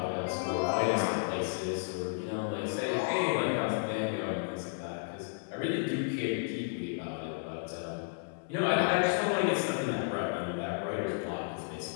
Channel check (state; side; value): silent; right; digital silence